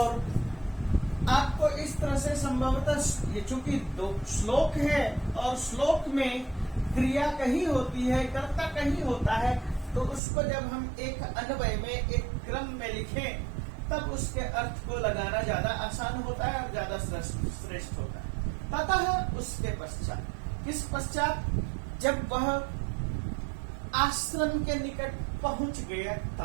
आपको इस तरह से संभवतः, ये चूंकि 2 श्लोक है और श्लोक में क्रिया कहीं होती है, कर्ता कहीं होता है, तो उसको जब हम एक अन्वय में, एक क्रम में लिखें, तब उसके अर्थ को लगाना ज्यादा आसान होता है और ज्यादा श्रेष्ठ होता है। ततः उसके पश्चात, किस पश्चात? जब वह आश्रम के निकट पहुंच गया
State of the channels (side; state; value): left; drops out; at 10.2 s